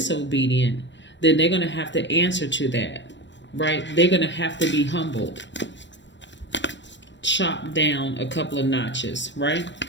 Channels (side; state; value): right; late; 0.53 ms